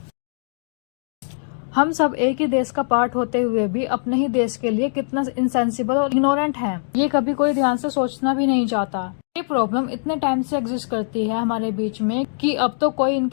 हम सब एक ही देश का पार्ट होते हुए भी अपने ही देश के लिए कितना इनसेंसिबल और इग्नोरेंट हैं, ये कभी कोई ध्यान से सोचना भी नहीं चाहता। ये प्रॉब्लम इतने टाइम से एग्जिस्ट करती है हमारे बीच में कि अब तो कोई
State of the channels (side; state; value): right; silent; digital silence